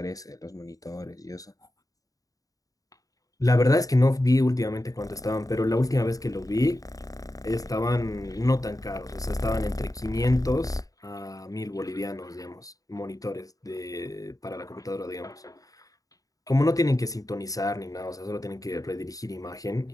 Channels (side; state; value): right; late; 0.17 ms